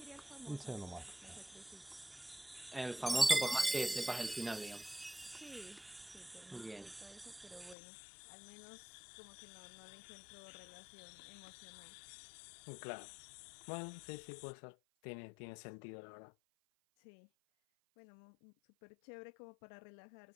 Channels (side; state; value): right; drops out; at 7.8 s